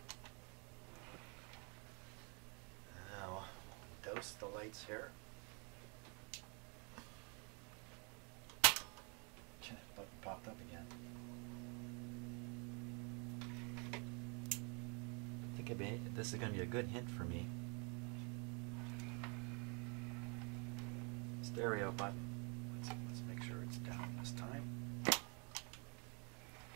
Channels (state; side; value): quieter; left; 34.8 dB